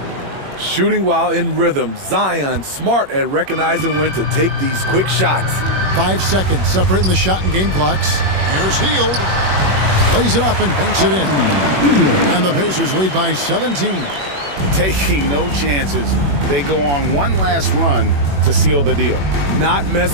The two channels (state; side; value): late; left; 21 ms